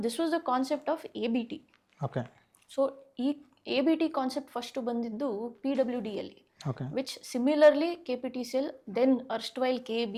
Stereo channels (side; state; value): both; identical; correlation 1.00